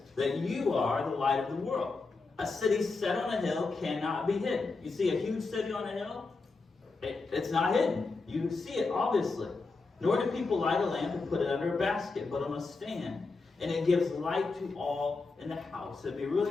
that you are the light of the world. A city set on a hill cannot be hidden. You see a huge city on a hill? It's not hidden. You see it, obviously. Nor do people light a lamp and put it under a basket, but on a stand. And it gives light to all in the house. It'd be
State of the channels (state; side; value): quieter; right; 3.9 dB